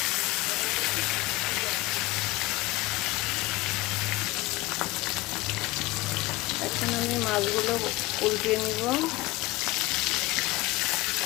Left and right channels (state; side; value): quieter; right; 20.3 dB